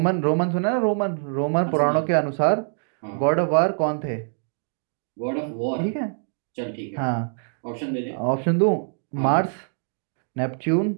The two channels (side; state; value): left; silent; 62 dB below the other